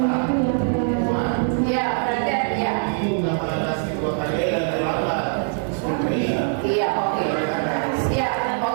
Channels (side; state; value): left; silent; 64 dB below the other